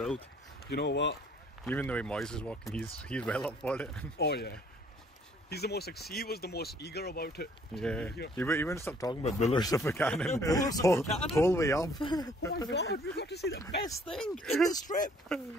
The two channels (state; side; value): normal; both; correlation 0.61